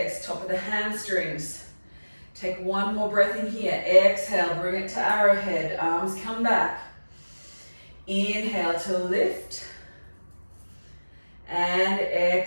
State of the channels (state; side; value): inverted; both; correlation -1.00